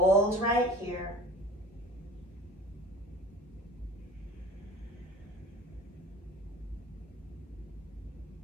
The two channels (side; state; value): both; normal; correlation 0.42